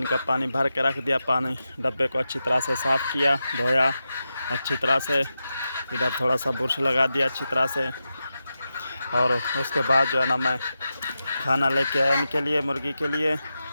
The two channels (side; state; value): both; inverted; correlation -0.90